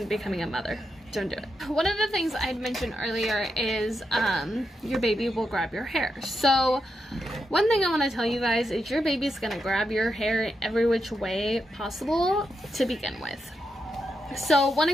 becoming a mother. Don't do it. One of the things I'd mentioned earlier is your baby will grab your hair. So one thing I want to tell you guys is your baby's going to grab your hair every which way possible to begin with. So one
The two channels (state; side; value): normal; both; correlation 0.85